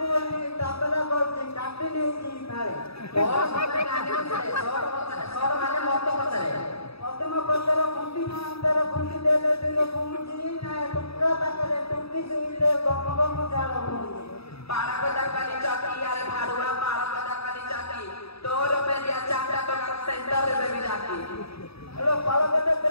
ने तबला करते काटे नहीं जी फाड़े बहुत सारे काटे से सौर माने मत पचरे मत पचरे कुंडी अंदर कुंडी देले दिलो कुंडी ना टुकड़ा तकरे टुकड़ी से ले गम जाला पारा को दरकाली चौकी यार भाड़ुआ पारा को दरकाली चौकी 2 रुपए दिया चाटा तो सेंटर में भी जाती हेलो पारा को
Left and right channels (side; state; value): right; late; 0.77 ms